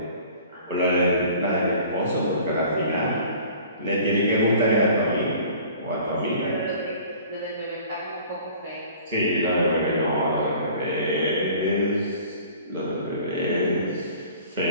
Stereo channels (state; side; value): inverted; both; correlation -0.48